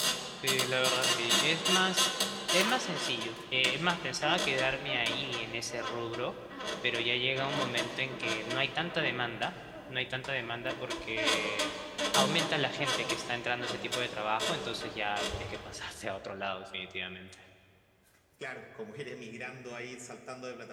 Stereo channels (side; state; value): both; identical; correlation 1.00